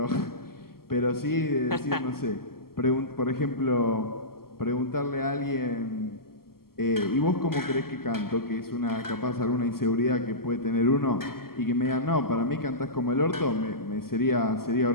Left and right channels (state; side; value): late; right; 0.93 ms